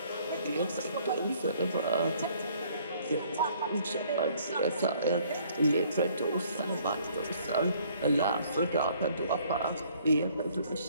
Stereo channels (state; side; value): inverted; both; correlation -0.61